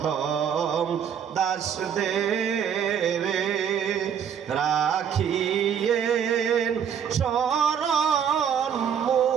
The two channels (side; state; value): left; quieter; 8.1 dB